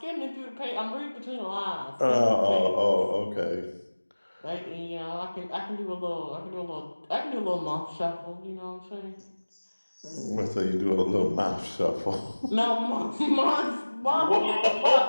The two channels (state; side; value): inverted; both; correlation -1.00